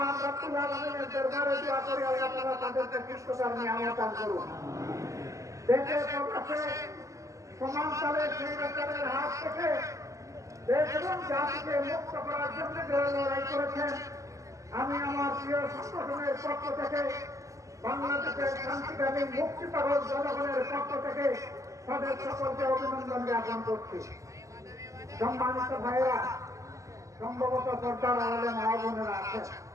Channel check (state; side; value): late; left; 0.16 ms